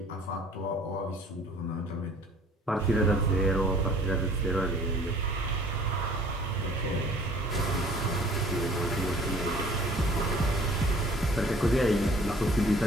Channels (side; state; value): both; normal; correlation 0.52